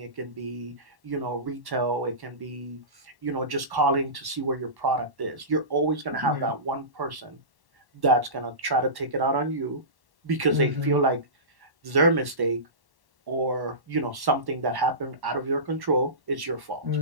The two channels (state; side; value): late; left; 1.1 ms